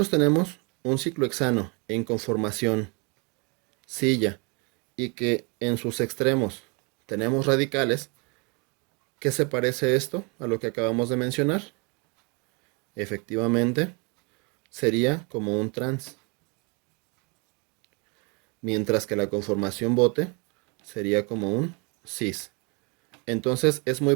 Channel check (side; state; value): left; quieter; 32.2 dB